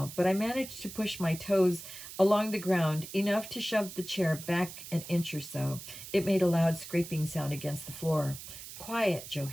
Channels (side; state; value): right; noise; hiss, 12 dB below the sound